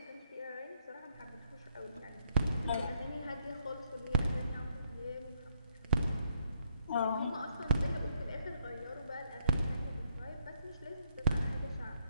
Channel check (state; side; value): inverted; both; correlation -0.74